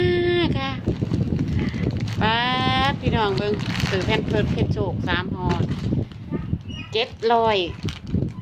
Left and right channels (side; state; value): both; identical; correlation 1.00